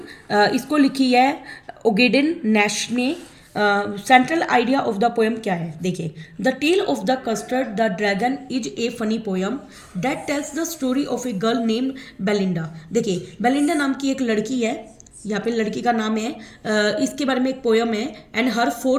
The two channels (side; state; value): both; identical; correlation 1.00